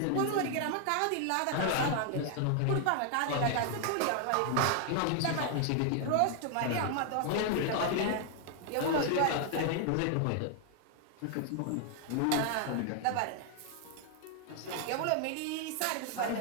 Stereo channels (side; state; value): both; different; correlation 0.00